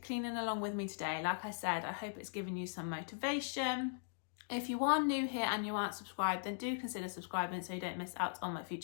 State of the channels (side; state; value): right; silent; digital silence